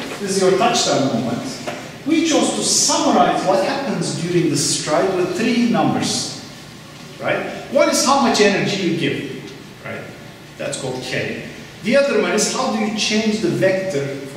This is your touchdown moment. We chose to summarize what happens during the stride with 3 numbers. Right? One is how much energy you give. Right? That's called K. The other one is how do you change the vector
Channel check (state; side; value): identical; both; correlation 1.00